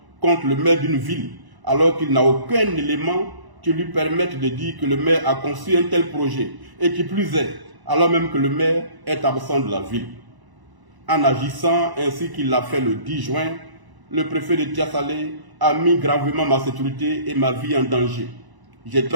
contre le maire d'une ville alors qu'il n'a aucun élément qui lui permette de dire que le maire a conçu un tel projet et qui plus est, alors même que le maire est absent de la ville? En agissant ainsi qu'il l'a fait le 10 juin, le préfet de Tia-Salé a mis gravement ma sécurité et ma vie en danger. J'ai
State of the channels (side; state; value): left; late; 1.0 ms